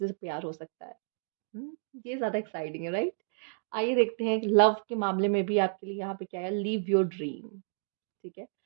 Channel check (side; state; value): left; silent; digital silence